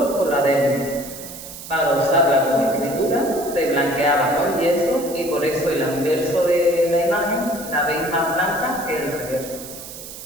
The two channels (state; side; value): noise; right; hiss, 13 dB below the sound